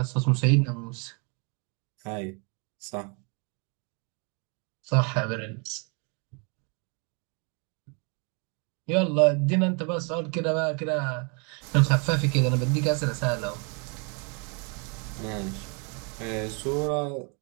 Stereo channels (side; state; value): left; quieter; 35.4 dB